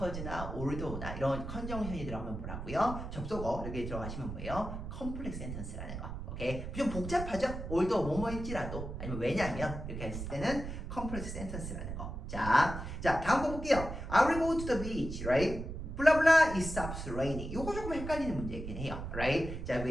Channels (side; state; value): right; noise; rumble, 7 dB below the sound